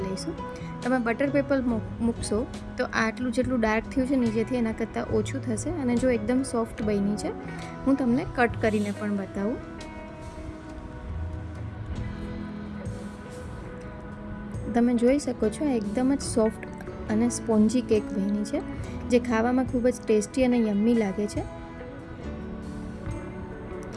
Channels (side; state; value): both; identical; correlation 1.00